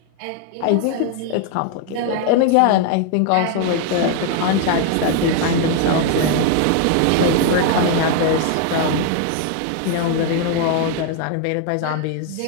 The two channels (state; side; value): different; both; correlation 0.00